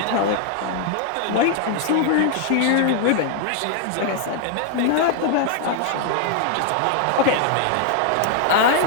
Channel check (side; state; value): both; different; correlation 0.00